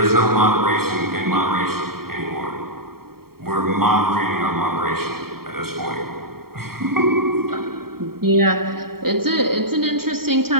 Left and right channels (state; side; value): late; left; 0.94 ms